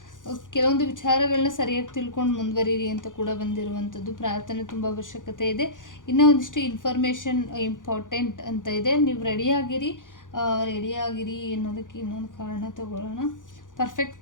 ಕೆಲವೊಂದು ವಿಚಾರಗಳನ್ನ ಸರಿಯಾಗಿ ತಿಳ್ಕೊಂಡು ಮುಂದುವರಿರಿ ಅಂತ ಕೂಡ ಬಂದಿರುವಂಥದ್ದು. ಪ್ರಾರ್ಥನೆ ತುಂಬ ಅವಶ್ಯಕತೆ ಇದೆ. ಇನ್ನೂ ಒಂದಿಷ್ಟು ಇನ್ಫಾರ್ಮೇಷನ್ ಇಂಪಾರ್ಟೆಂಟ್ ಅಂತ ಇದೆ. ನೀವು ರೆಡಿಯಾಗಿರಿ ಅನ್ನೋದಕ್ಕೆ ಇನ್ನೊಂದು ಕಾರಣ ತಗೊಳ್ಳೋಣ.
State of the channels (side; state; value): right; late; 0.88 ms